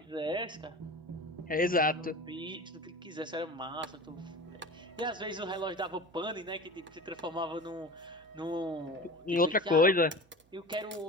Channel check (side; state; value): both; normal; correlation 0.33